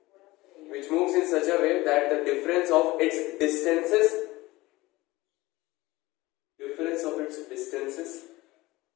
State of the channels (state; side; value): quieter; right; 19.8 dB